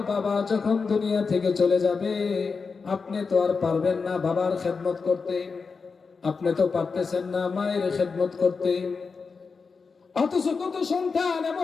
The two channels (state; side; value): quieter; right; 4.9 dB